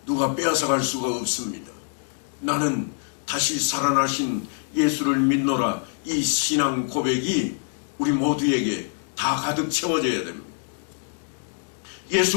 누가 빼앗아갈 수가 없습니다. 나는 다시 살아나신 예수를 믿노라. 이 신앙 고백이 우리 모두에게 다 가득 채워져야 됩니다.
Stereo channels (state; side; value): silent; right; 62 dB below the other